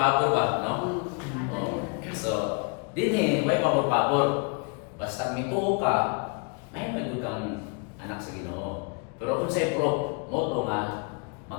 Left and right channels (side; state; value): right; quieter; 35.2 dB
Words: ba? No? So, din may pabor-pabor. Basta mituo ka, may kang anak sa Ginoo. Pero unsay pro, moto nga